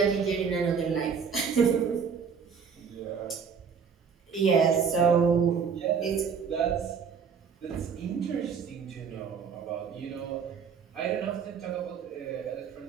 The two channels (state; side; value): quieter; left; 6.4 dB